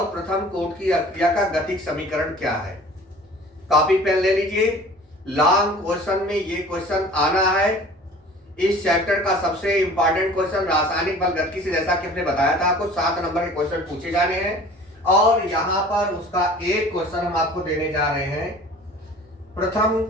प्रथम कोट की अभिक्रिया का गतिक समीकरण क्या है। कॉपी पेन ले लीजिए। लॉन्ग क्वेश्चन में ये क्वेश्चन आना है। इस चैप्टर का सबसे इंपॉर्टेंट क्वेश्चन रासायनिक बल गतिकी से, जैसा कि हमने बताया था, आपको 7 नंबर के क्वेश्चन पूछे जाने हैं और यहां पर उसका एक क्वेश्चन हम आपको देने जा रहे हैं। प्रथम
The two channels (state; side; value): normal; both; correlation 0.45